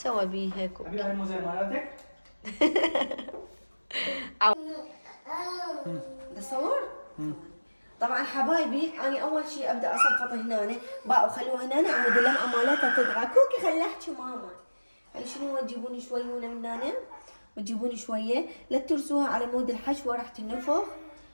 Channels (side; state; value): both; inverted; correlation -1.00